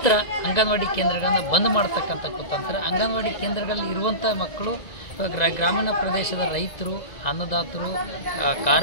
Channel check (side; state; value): right; late; 2.0 ms